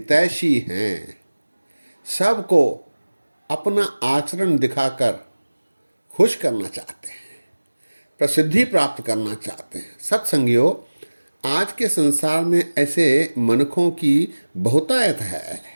हैं, सबको अपना आचरण दिखाकर खुश करना चाहते हैं, प्रसिद्धि प्राप्त करना चाहते हैं। सत्संगियों, आज के संसार में ऐसे मनुष्यों की बहुतायत है।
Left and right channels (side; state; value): both; inverted; correlation -1.00